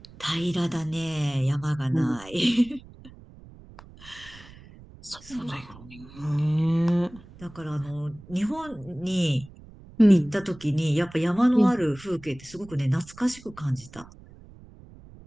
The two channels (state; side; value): noise; right; rumble, 20 dB below the sound